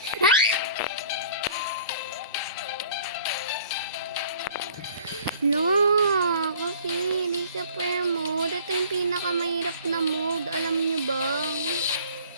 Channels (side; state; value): both; inverted; correlation -0.51